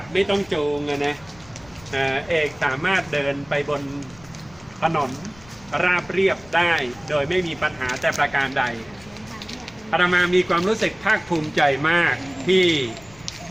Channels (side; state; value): left; noise; rumble, 24 dB below the sound